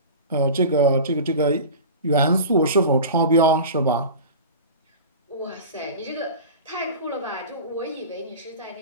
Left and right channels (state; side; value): inverted; both; correlation -0.34